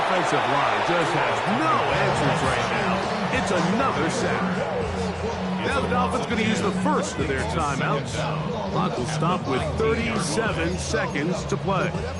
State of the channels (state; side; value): identical; both; correlation 1.00